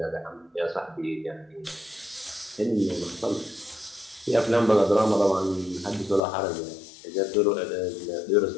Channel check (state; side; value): drops out; right; at 6.2 s